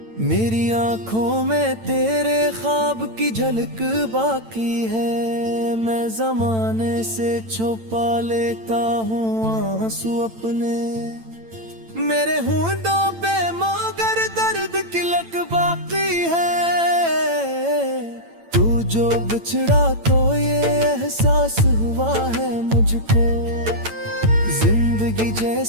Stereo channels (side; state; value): left; late; 8.9 ms